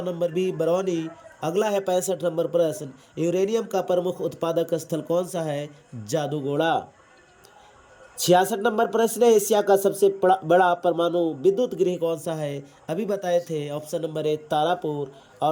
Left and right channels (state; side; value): identical; both; correlation 1.00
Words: नंबर बी, बरौनी। अगला है 65 नंबर प्रश्न, यूरेनियम का प्रमुख उत्पादक स्थल कौन सा है? जादूगोड़ा। 66 नंबर प्रश्न है, एशिया का सबसे बड़ा परमाणु विद्युत गृह कौन सा है? अभी बताए थे, ऑप्शन नंबर ए, तारापुर।